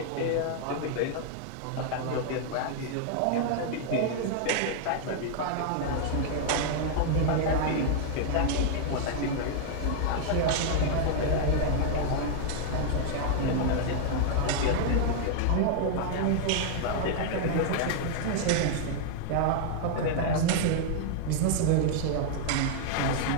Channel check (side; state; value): both; different; correlation 0.00